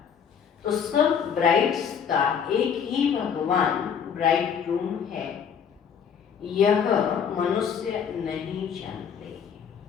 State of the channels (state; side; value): quieter; right; 7.4 dB